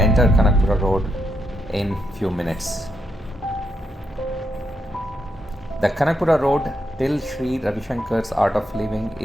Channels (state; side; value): normal; both; correlation 0.80